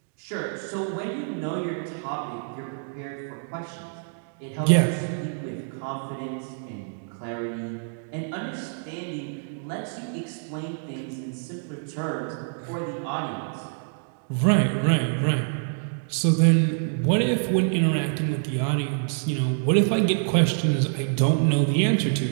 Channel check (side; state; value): left; silent; digital silence